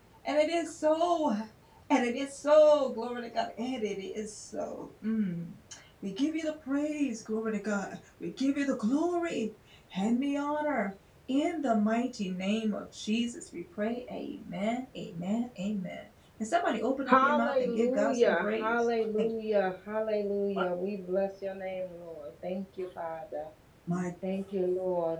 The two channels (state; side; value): identical; both; correlation 1.00